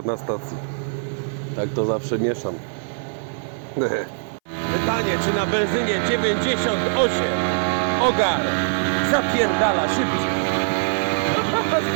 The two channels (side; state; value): left; silent; 61 dB below the other